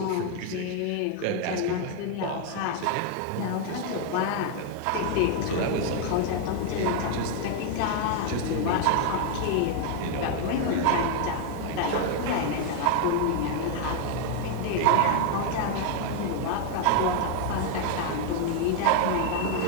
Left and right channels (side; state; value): both; different; correlation 0.00